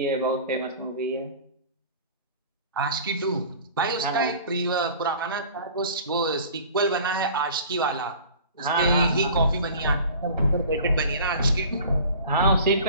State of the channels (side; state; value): both; inverted; correlation -0.43